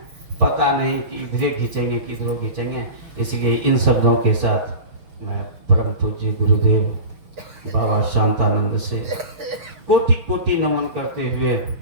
पता नहीं कि इधरे खींचेंगे किधरों खींचेंगे। इसलिए इन शब्दों के साथ मैं परम पूज्य गुरुदेव बाबा शांतानंद से कोटि कोटि नमन करते हुए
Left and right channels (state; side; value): late; left; 6.5 ms